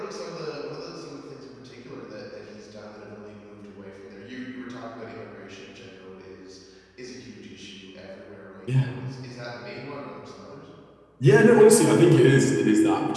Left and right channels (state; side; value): identical; both; correlation 1.00